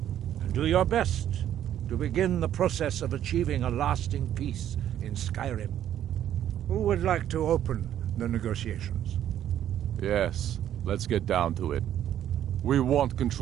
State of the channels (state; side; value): quieter; left; 11.0 dB